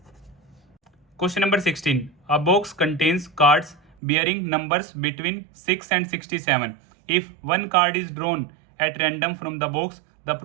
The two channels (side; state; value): left; drops out; at 4.0 s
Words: Question number 16, a box contains cards bearing numbers between 6 and 67. If one card is drawn at random from the box, the